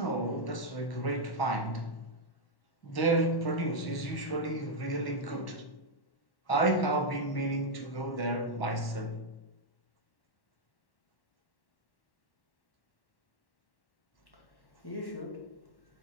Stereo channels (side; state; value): right; late; 1.1 ms